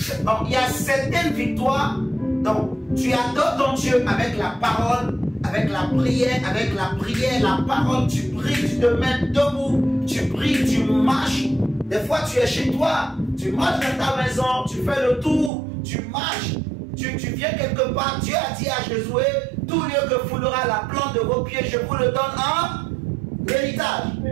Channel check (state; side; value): drops out; left; at 15.5 s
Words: Donc, il y a certaines victoires. Donc, tu adores ton Dieu avec la parole, avec la prière, la parole. Tu pries, tu te mets debout. Tu pries, tu marches. Des fois, tu es chez toi. Tu marches dans ta maison. Tu fais le tour. Tu marches. Tu viens quelque part. Dieu a dit à Josué, tout lieu que foulera la plante de vos pieds, je vous le donne en héritage.